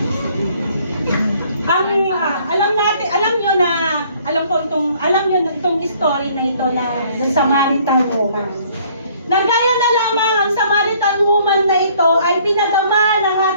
Alam nyo itong story na ito na Samaritan woman. Nagaya na lamang ang Samaritan woman na ito ay pinadama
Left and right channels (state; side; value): inverted; both; correlation -0.60